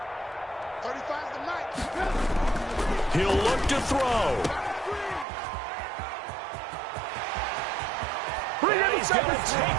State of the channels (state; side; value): drops out; left; at 5.2 s